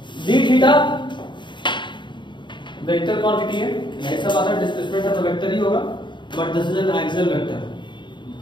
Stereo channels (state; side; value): late; right; 0.23 ms